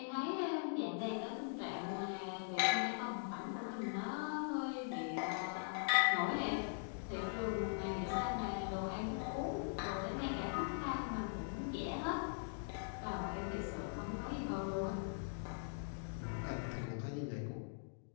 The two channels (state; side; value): silent; right; digital silence